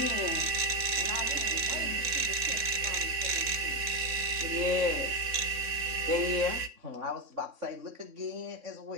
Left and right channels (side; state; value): left; late; 3.6 ms